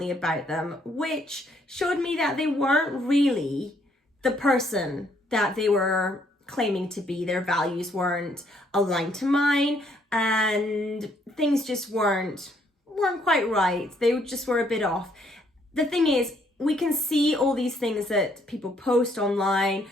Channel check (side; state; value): both; normal; correlation 0.68